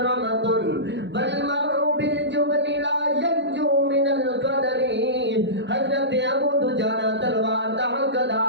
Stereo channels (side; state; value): left; late; 0.52 ms